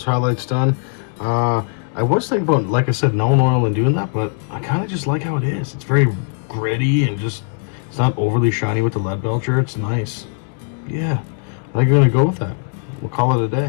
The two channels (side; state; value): right; silent; 57 dB below the other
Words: highlights done, I was thinking about, like I said, no oil and doing that, but I kind of just like how it is. It's very gritty and just, it's not overly shiny with the lead belcher. It's nice. Yeah, I think I'm going to go with that. We'll call it a